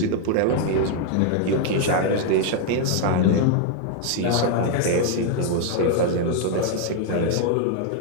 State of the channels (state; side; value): different; both; correlation 0.00